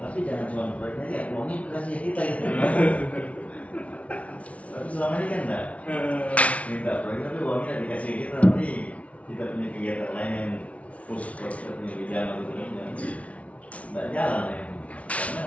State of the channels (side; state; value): right; late; 0.065 ms